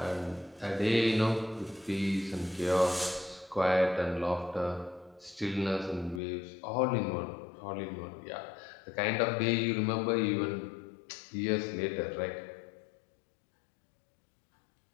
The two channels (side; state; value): right; drops out; at 6.2 s